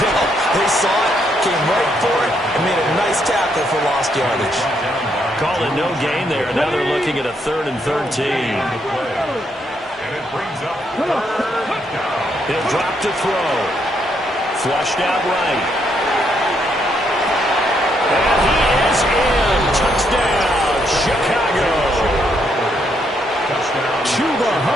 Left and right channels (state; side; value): normal; both; correlation 0.75